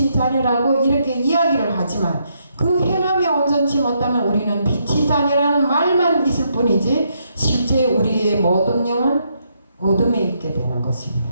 자녀라고 이렇게 이야기를 하지만 그 행함이 온전치 못하면 우리는 빛이 자녀라는 말만 있을 뿐이지 실제 우리의 모든 영은 어둠에 있게 되는 것입니다.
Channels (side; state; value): both; inverted; correlation -0.77